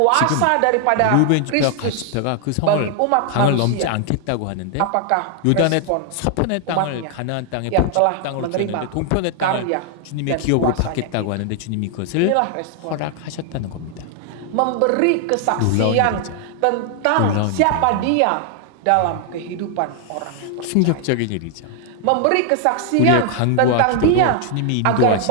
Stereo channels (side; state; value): both; different; correlation 0.00